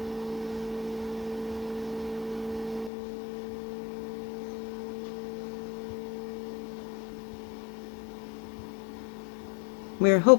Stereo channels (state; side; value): drops out; right; at 2.9 s